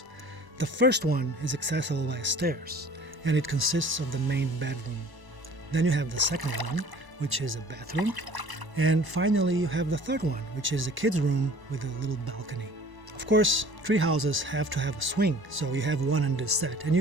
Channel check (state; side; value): late; left; 1.0 ms